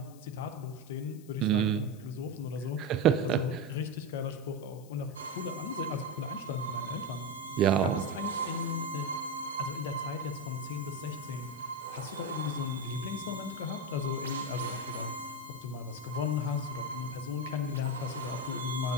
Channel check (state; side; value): noise; left; hiss, 23 dB below the sound